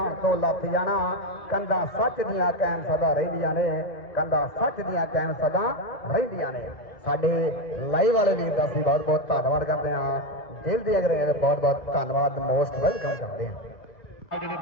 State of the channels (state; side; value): late; right; 2.0 ms